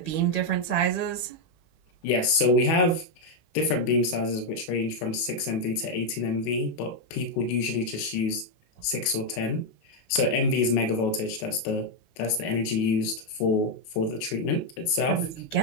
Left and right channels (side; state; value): right; late; 19 ms